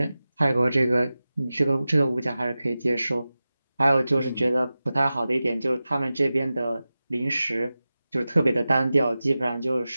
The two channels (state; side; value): inverted; both; correlation -0.95